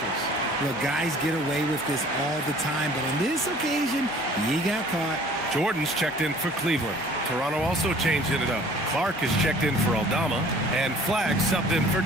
Look, guys get away with this all the time, but on this occasion, he got caught. Jordan's checked in for Cleveland. Toronto also changed it up. Clark is checked in for Aldama, and Flagg subbed in for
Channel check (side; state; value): both; normal; correlation 0.51